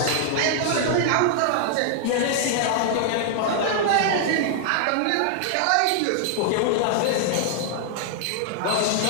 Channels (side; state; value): both; different; correlation -0.01